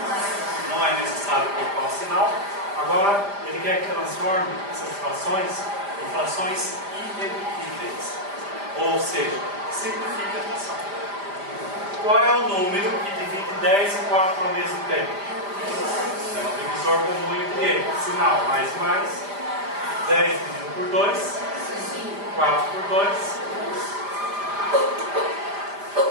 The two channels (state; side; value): late; left; 5.0 ms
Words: Não é necessário colocar o sinal. Agora ele quer que transforme essas frações em frações irredutíveis. Ou seja, simplifique a fração. Qual é o número que divide 10 e 4 ao mesmo tempo? É um divisor comum entre eles. Sinal mais e mais. 10 dividido por 2, 4 por 2.